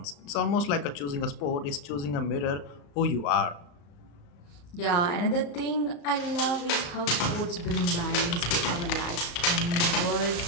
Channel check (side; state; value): right; late; 35 ms